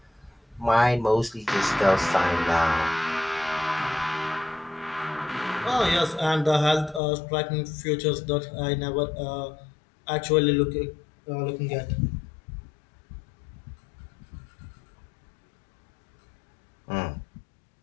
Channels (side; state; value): right; drops out; at 7.0 s